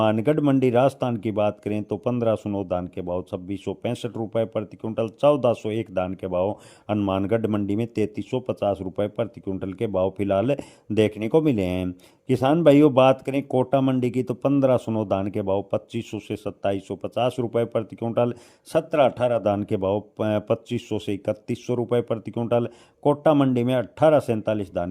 मंडी राजस्थान की बात करें तो 1509 धान के भाव 2665 रुपए प्रति क्विंटल। 1401 धान के भाव हनुमानगढ़ मंडी में 3350 रुपए प्रति क्विंटल के भाव फिलहाल देखने को मिले हैं। किसान भाइयों, बात करें कोटा मंडी की तो 1509 धान के भाव 2500 से 2750 रुपए प्रति क्विंटल। 17-18 धान के भाव 2500 से 3100 रुपए प्रति क्विंटल। कोटा मंडी में 18-47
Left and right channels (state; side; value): identical; both; correlation 1.00